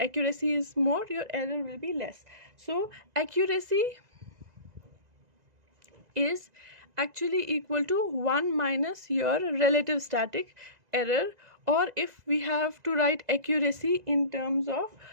is more, your error will be less. So accuracy is actually equal to 1 minus your relative static error, or if we have to write accuracy in terms of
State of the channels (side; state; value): left; late; 2.0 ms